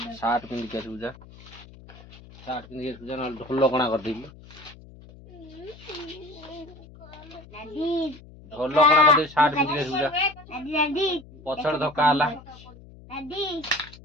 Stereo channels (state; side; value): noise; left; hum, 20 dB below the sound